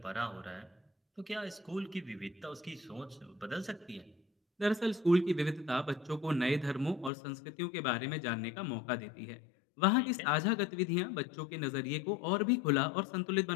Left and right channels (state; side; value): drops out; right; at 7.1 s